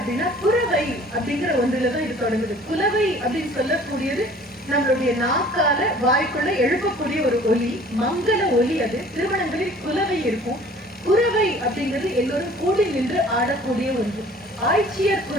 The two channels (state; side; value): normal; both; correlation 0.50